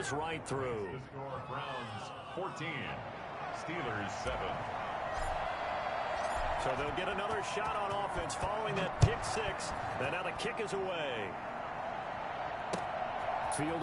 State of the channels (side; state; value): both; identical; correlation 1.00